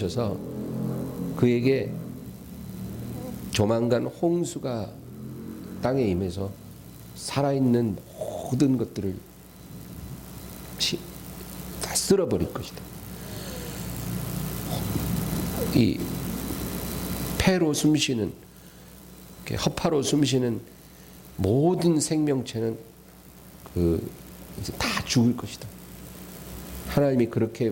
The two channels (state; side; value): identical; both; correlation 1.00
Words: 그에게 조만간 홍수가 땅에 임해서 살아있는 모든 것들을 다 쓸어버릴 것이다. 이 폐로 숨쉬는, 허파로 숨쉬는 모든 생명체는 이제 다 죽을 것이다. 하나님이